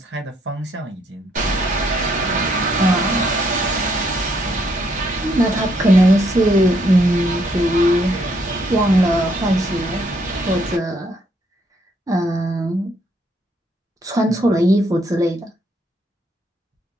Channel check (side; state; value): both; normal; correlation 0.71